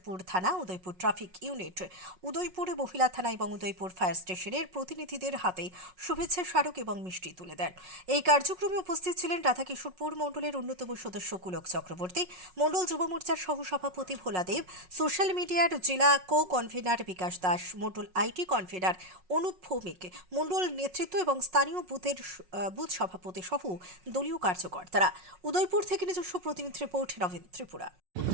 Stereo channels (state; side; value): late; left; 5.4 ms